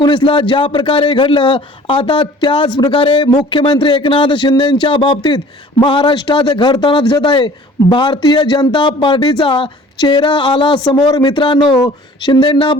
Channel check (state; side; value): normal; both; correlation 0.49